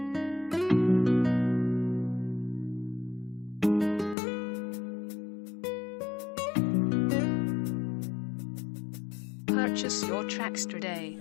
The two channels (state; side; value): drops out; right; at 4.2 s